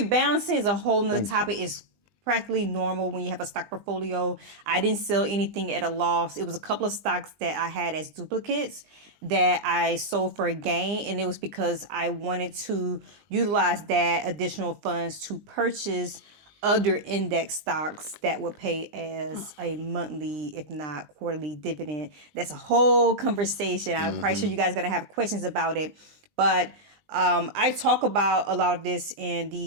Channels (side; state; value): left; late; 20 ms